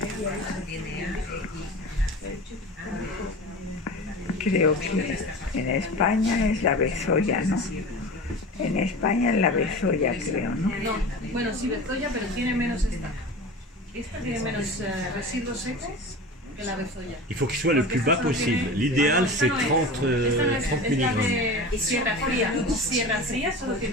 Creo que en España es la bezoya, ¿no? En España es la bezoya, creo, ¿no? No, bueno, sí, bezoya, pero tiene menos esta. Esta tiene menos residuos secos que la bezoya. il faut qu'il soit le plus bas possible. L'idéal, c'est 30 Esta no es, 30 es la mg. de Sierra Fría. Sierra Fría solo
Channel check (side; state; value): both; normal; correlation 0.33